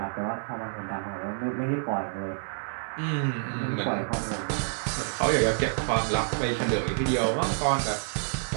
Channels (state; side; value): silent; left; 59 dB below the other